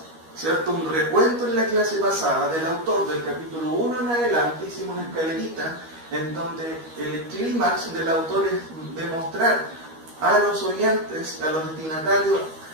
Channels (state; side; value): late; left; 13 ms